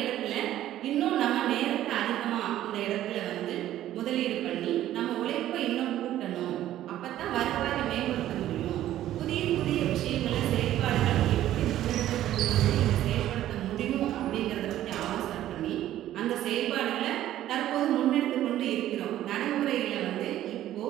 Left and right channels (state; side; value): quieter; left; 13.0 dB